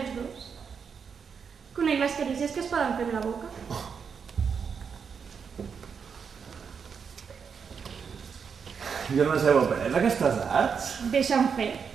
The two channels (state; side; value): quieter; left; 6.4 dB